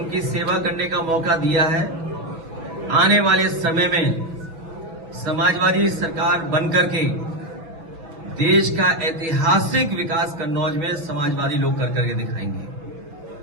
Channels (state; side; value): late; left; 6.1 ms